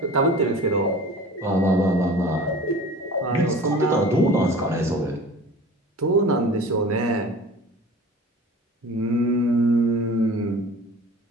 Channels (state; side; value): normal; both; correlation 0.41